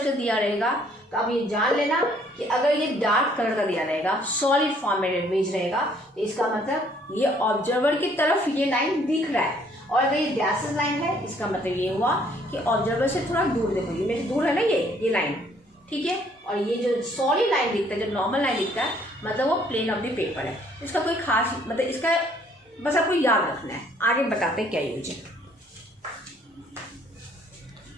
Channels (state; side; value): normal; both; correlation 0.63